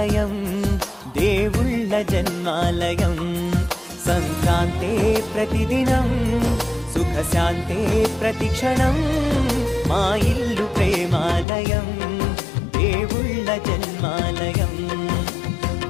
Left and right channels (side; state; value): right; drops out; at 11.5 s